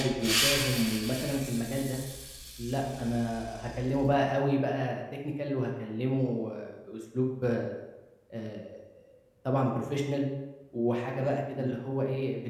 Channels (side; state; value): both; identical; correlation 1.00